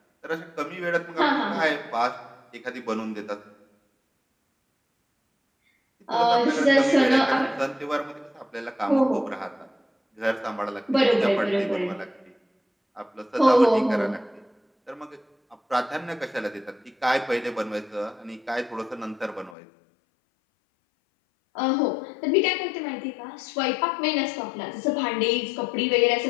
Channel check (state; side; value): drops out; right; at 19.6 s